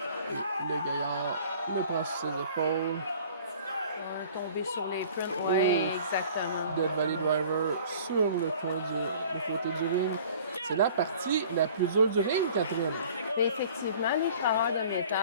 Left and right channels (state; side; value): inverted; both; correlation -0.49